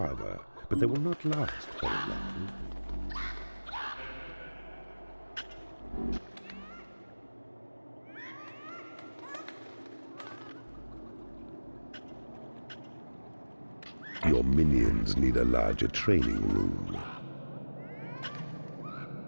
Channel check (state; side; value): inverted; both; correlation -1.00